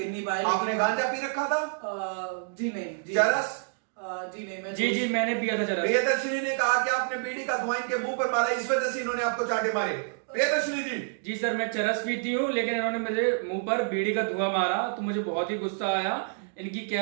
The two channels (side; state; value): left; silent; digital silence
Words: नहीं पाया। आपने गांजा पी रखा था? जी नहीं। जी चरस? जी नहीं। मैं जी मैंने पिया था चरस। प्रियदर्शनी ने कहा कि आपने बीड़ी का धुआं इनके मुंह पर मारा, इस वजह से इन्होंने आपको चांटे मारे। प्रियदर्शनी जी। जी सर, मैं चरस पीती हूँ, लेकिन इन्होंने मेरे मुंह पर बीड़ी का धुआं मारा तो मुझे बहुत ही गुस्सा आया। इनकी